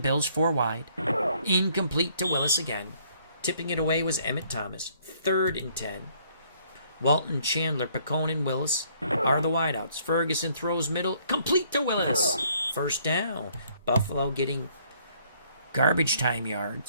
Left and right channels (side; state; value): both; inverted; correlation -0.64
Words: 4 wide. Incomplete to Willis again. Tipping it away was Emmett Thomas. 3rd and 10. Walton, Chandler, Picone, and Willis are the wideouts. Ferguson throws middle. Complete to Willis. 1st down. Buffalo getting garbage time